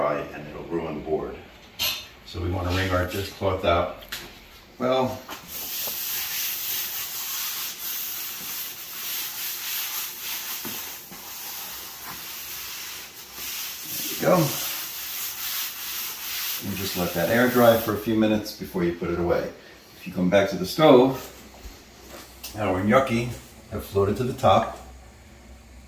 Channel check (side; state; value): both; identical; correlation 1.00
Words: and it'll ruin the board. So we want to wring our dishcloth out. Well, there you go. And just let that air dry for a few minutes before you put it away. If you come back to the stove, our gnocchi have floated to the top.